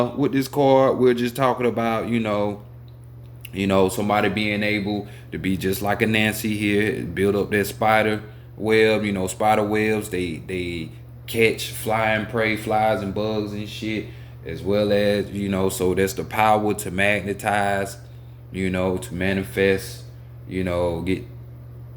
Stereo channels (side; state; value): both; identical; correlation 1.00